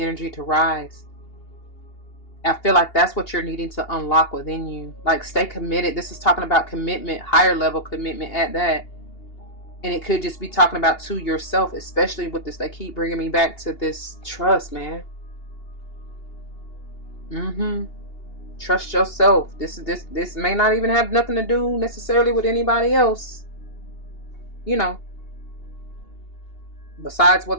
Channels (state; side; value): late; right; 2.8 ms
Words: to rise. I feel like that's what you're needing to unlock within you. Like, stay committed. This is talking about commitment, higher level commitment at that. And it could just be talking about to yourself, especially with this. They keep bringing me back to this trust, man. Trust yourself. This may not even have nothing to do necessarily with anybody else. You know. Besides